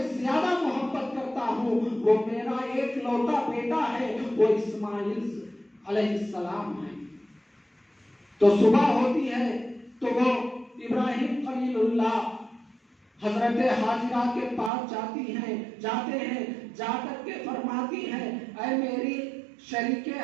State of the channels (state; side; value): drops out; left; at 14.7 s